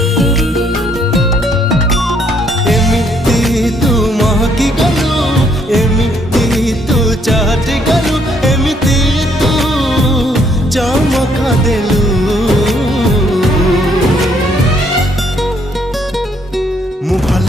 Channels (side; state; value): both; normal; correlation 0.68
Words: एमिति तू महकी गलु एमिति तू चाहटी गलु एमिति तू चमका देलु मु भल